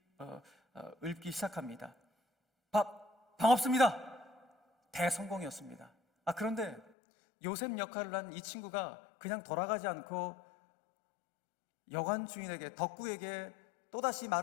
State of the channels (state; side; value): drops out; right; at 6.9 s